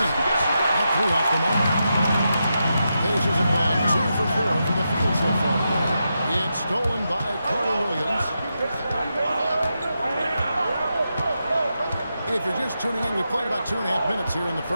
That threw off the mark. Pacers have gone 2 for 4 from the field so far. It's stolen by Carter Williams. If you're just tuning in, we played about 2.5 minutes here in the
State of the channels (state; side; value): inverted; both; correlation -0.87